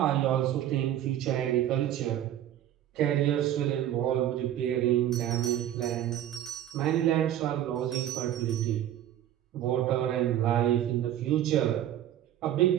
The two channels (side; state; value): left; quieter; 11.8 dB